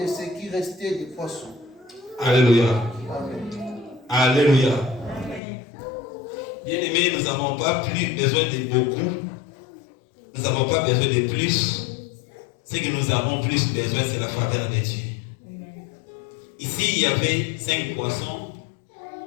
ce qui restait des poissons. Alléluia. Amen. Alléluia. Bien-aimés, nous n'avons pas plus besoin de beaucoup. Nous n'avons pas besoin de plus. Ce que nous avons plus besoin, c'est la faveur de Dieu. Ici, il y avait 5 poissons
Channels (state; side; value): drops out; right; at 5.4 s